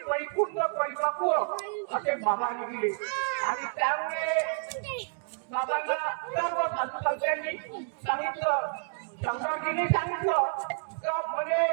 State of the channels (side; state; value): left; silent; digital silence